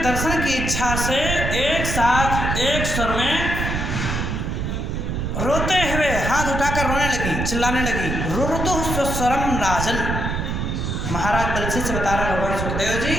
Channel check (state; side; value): noise; right; rumble, 2 dB below the sound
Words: की इच्छा से एक साथ एक स्वर में रोते हुए हाथ उठाकर रोने लगी, चिल्लाने लगी। रुरुदुः सुस्वरम राजन। महाराज परीक्षित से बता रहे भगवान सुखदेव जी,